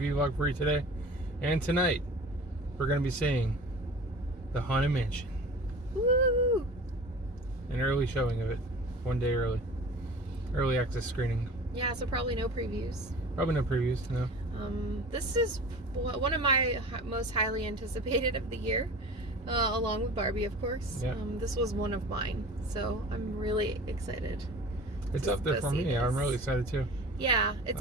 vlog for you today. And tonight, we're going to be seeing The Haunted Mansion. Woo! An early showing of it. 1 day early. Early access screening. Yeah, so probably no previews. Probably no previews, no. This is one of my most highly anticipated of the year, along with Barbie, of course. Yeah. This was one of mine, so I'm really excited. It's up there for me. This. I'm really excited too. Yeah,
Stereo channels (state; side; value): normal; both; correlation 0.39